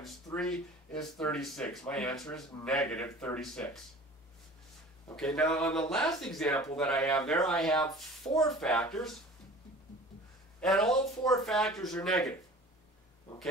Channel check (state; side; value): normal; both; correlation 0.43